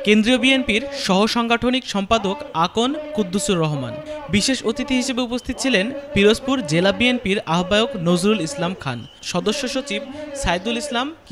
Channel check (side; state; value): both; identical; correlation 1.00